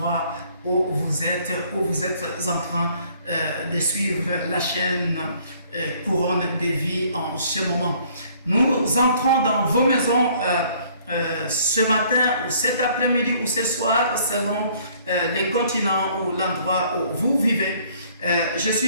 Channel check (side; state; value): both; inverted; correlation -0.60